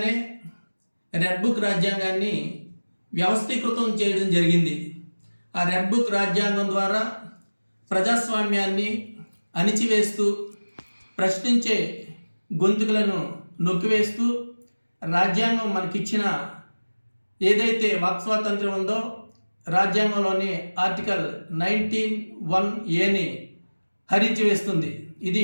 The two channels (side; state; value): both; inverted; correlation -1.00